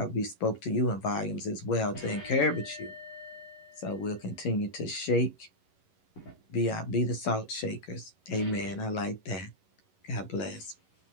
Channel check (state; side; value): late; right; 11 ms